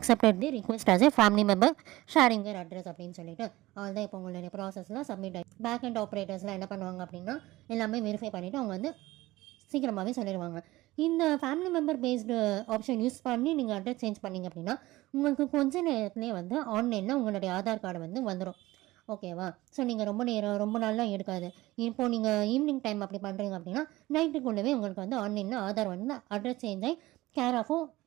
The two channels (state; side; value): quieter; left; 18.3 dB